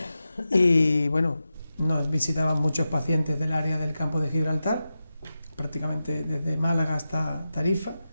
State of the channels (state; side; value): inverted; both; correlation -0.92